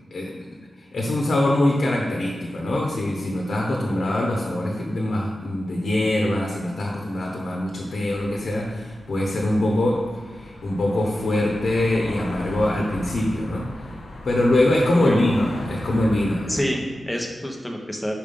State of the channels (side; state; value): both; normal; correlation 0.92